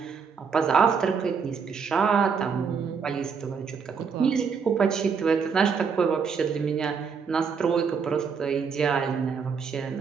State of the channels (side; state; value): left; quieter; 6.0 dB